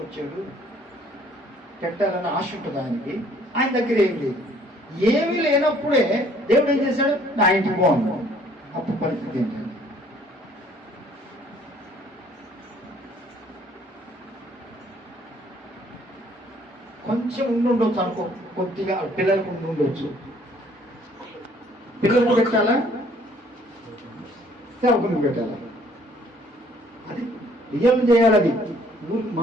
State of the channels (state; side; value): normal; both; correlation 0.60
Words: వచ్చాడు, పెట్టాలని ఆశ ఉంటుంది ఆయనకి. ఆయన దగ్గర ఏం లేదు. ఏమీ లేనప్పుడే దేవుడు ఏం చేశాడు? నా ఇంటికి బాగున్నాడు. అప్పుడు పరిస్థితి ఏంటండి? కొంచెం ఉండుండొచ్చు అనుకో, కొద్దిగా పిల్లలకు ఉండుండొచ్చు. పిల్లలకు పెట్టాలా, సేవకుని పెట్టాలా? అది రియల్ చేయాలి. అది